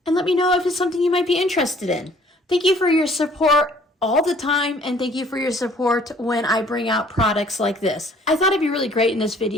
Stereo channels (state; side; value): normal; both; correlation 0.58